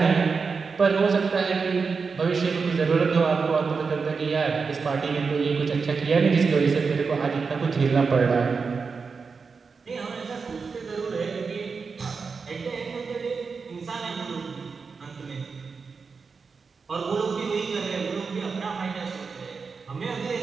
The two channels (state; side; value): quieter; left; 5.0 dB